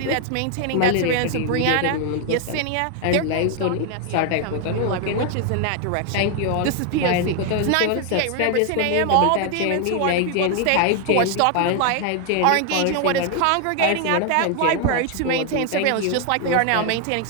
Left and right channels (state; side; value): different; both; correlation 0.00